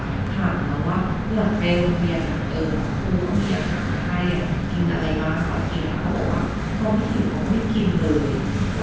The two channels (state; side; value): identical; both; correlation 1.00